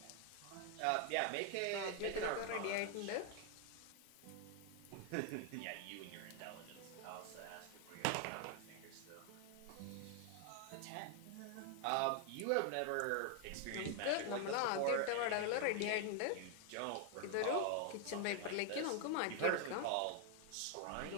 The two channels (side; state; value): both; different; correlation 0.00